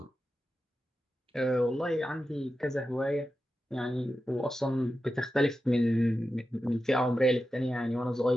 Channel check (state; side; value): normal; both; correlation 0.91